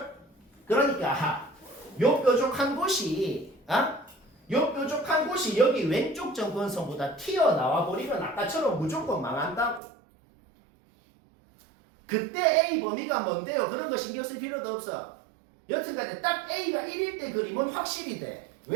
그러니까 요 뾰족한 곳이 여기 왼쪽 정근선보다 튀어나와 버리면 아까처럼 무조건 망한다고. 그때 A 범위가 뭔데요? 그런 거 신경 쓸 필요도 없어. 여튼간에 딱 A가 1일 때 그림은 확실히 돼.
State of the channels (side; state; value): left; drops out; at 9.8 s